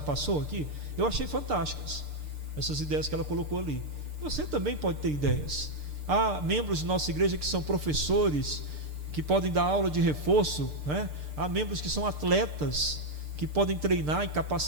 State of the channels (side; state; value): left; late; 6.7 ms